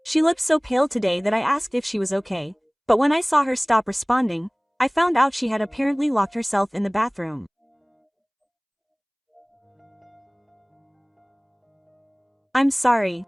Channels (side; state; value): both; identical; correlation 1.00